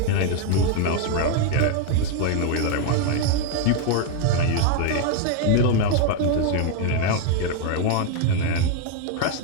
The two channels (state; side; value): different; both; correlation 0.01